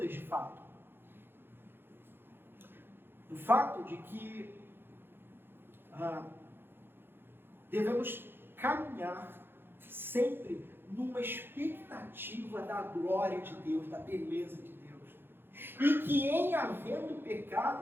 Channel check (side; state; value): left; late; 0.10 ms